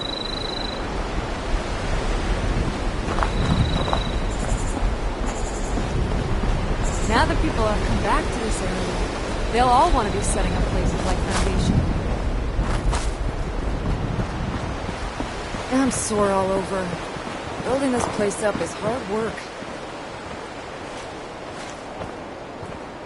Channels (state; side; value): identical; both; correlation 1.00